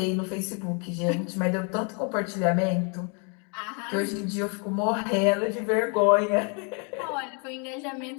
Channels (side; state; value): right; quieter; 37.0 dB